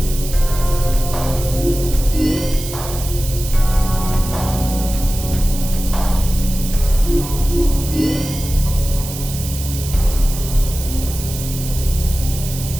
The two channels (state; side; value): noise; right; hiss, 10 dB below the sound